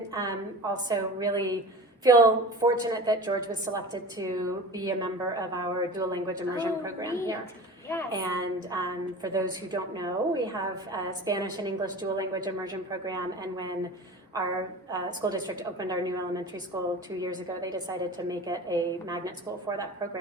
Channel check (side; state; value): both; normal; correlation 0.35